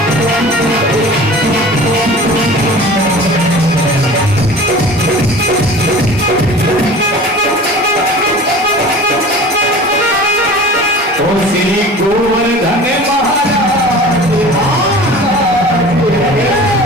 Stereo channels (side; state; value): both; normal; correlation 0.40